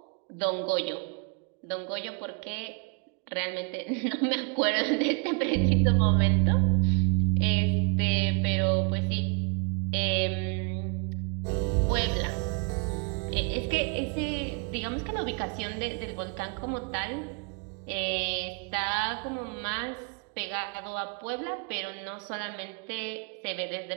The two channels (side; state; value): left; quieter; 35.3 dB